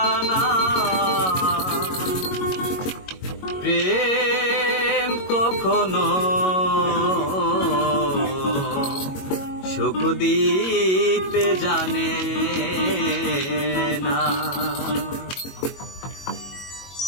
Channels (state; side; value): late; right; 22 ms